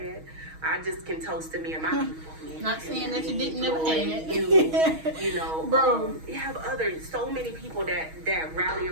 I just can toast to me and my people. Not saying that you didn't never had. You know, bro. You have so many people that rally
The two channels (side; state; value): left; late; 6.3 ms